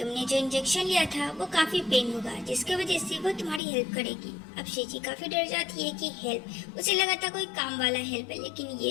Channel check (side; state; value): right; drops out; at 3.6 s